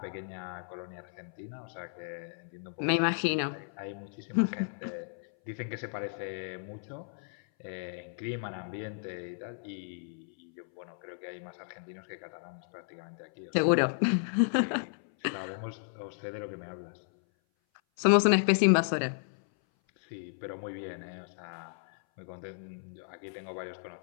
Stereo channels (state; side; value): silent; right; 55 dB below the other